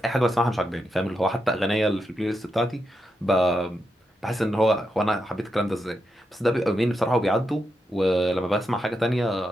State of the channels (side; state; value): both; normal; correlation 0.85